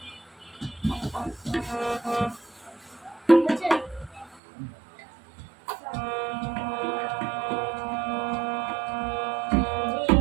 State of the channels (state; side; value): drops out; left; at 4.4 s